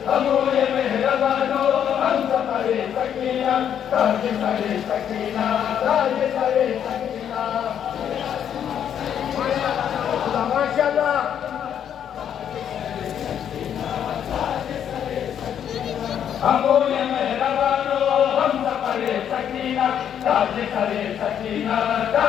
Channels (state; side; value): quieter; right; 9.1 dB